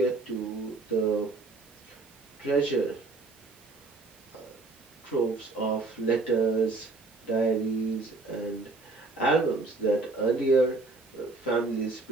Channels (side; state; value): left; quieter; 3.5 dB